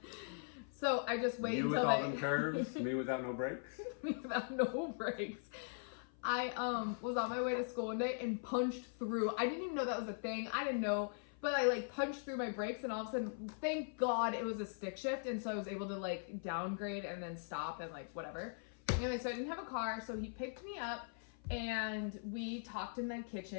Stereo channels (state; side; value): silent; right; 51 dB below the other